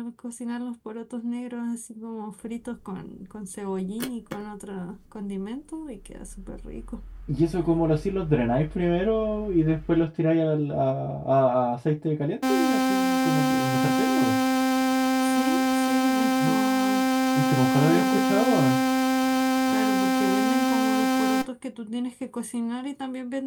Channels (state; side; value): identical; both; correlation 1.00